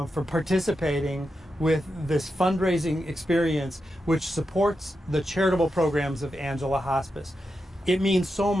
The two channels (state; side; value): normal; both; correlation 0.88